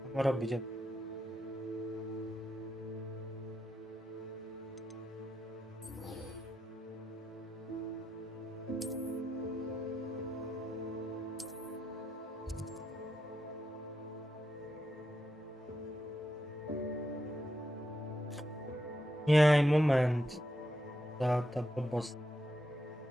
Mám robiť. Nie, moment. Tá blbosť.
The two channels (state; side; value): normal; both; correlation 0.84